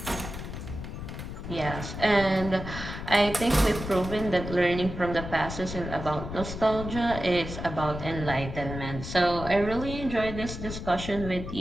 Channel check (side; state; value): left; noise; rumble, 8 dB below the sound